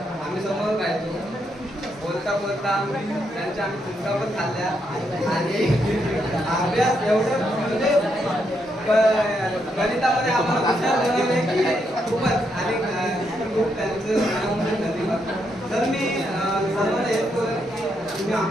आम्ही समोर राहायचो, बोलता बोलता त्यांच्या आम्ही चुका पण खाल्ल्या आणि अभ्यास एवढं म्हणजे गणितामध्ये आम्हाला हुशार बनवले की खूपच. आणि खूप त्यांचं धन्यवाद. तर मी सर्वांना हेच बोलेन की तुम्ही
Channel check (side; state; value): both; normal; correlation 0.79